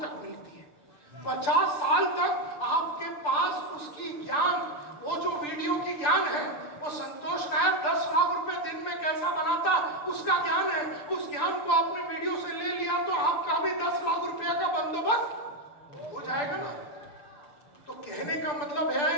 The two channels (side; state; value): right; late; 6.8 ms